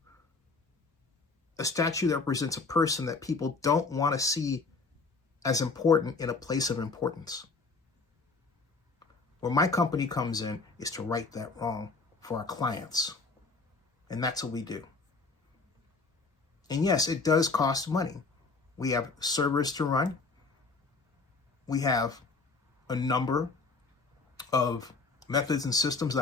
A statue that represents a person that people don't want to see as important in a place of importance. Where my company comes in is to right that wrong for our clients. And that's what we do. And yes, it does cost money. We have servers to run. We have a number of methods and systems that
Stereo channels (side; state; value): right; quieter; 4.1 dB